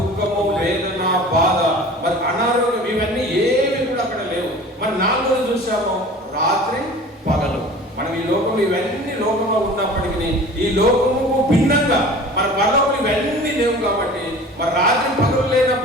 వేదన, బాధ, మరి అనారోగ్యం ఇవన్నీ ఏవి కూడా అక్కడ లేవు. మరి 4వది చూసాము రాత్రి పగలు. మనం ఈ లోకంలో ఇవన్నీ లోకంలో ఉన్నప్పటికీ ఈ లోకముకు భిన్నంగా మన పరలోకంలో ఇవన్నీ లేవు కాబట్టి మరి రాత్రి పగలు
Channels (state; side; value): normal; both; correlation 0.41